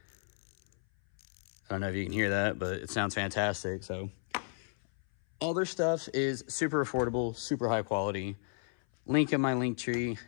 I don't know if you can hear that, but it sounds fantastic. So all their stuff is super affordable, super high quality. Link in my link tree.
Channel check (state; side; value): silent; right; 56 dB below the other